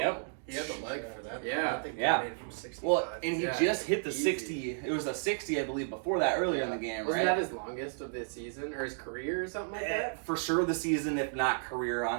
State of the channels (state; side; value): silent; left; digital silence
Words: Yep. He had the leg for that. Yeah. I think he Yeah. made it from 65. Well, and he just hit the 60. It was a 60, I believe, before that earlier in the game, Wasn't right? that his longest of the season or his career or something like that? For sure the season, if not career,